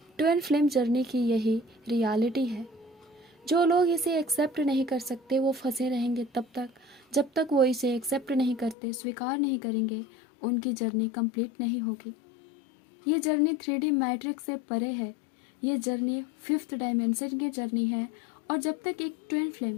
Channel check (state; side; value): drops out; right; at 8.8 s